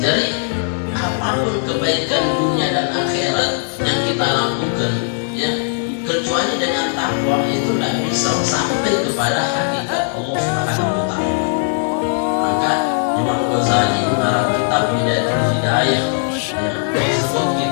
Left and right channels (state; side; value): silent; right; digital silence